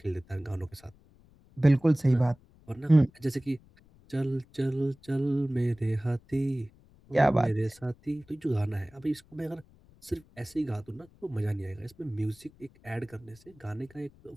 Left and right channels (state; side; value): noise; left; rumble, 27 dB below the sound